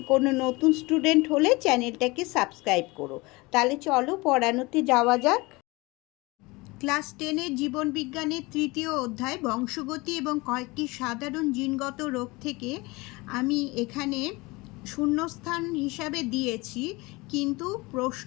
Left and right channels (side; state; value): right; quieter; 23.7 dB